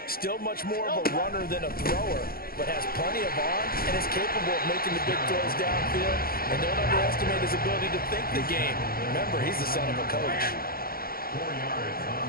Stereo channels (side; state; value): right; late; 0.43 ms